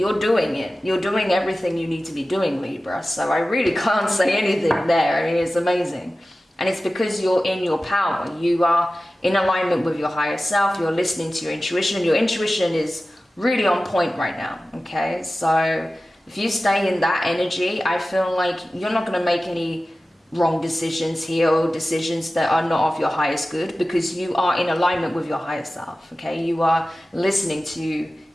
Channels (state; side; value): normal; both; correlation 0.95